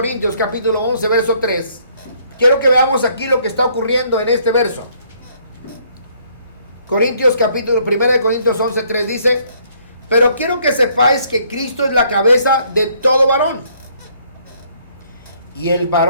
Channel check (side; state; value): both; inverted; correlation -0.65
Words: capítulo 11, verso 3, quiero que veamos aquí lo que está ocurriendo en este verso. 1 de Corintios 11, 3 dice: pero quiero que sepáis que Cristo es la cabeza de todo varón, y el